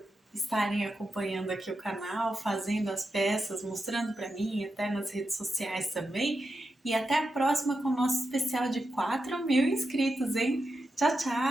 estarem acompanhando aqui o canal, fazendo as peças, mostrando para mim, até nas redes sociais também. E até a próxima com o nosso especial de 4.000 inscritos, hein? Tchau,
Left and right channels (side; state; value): both; normal; correlation 0.88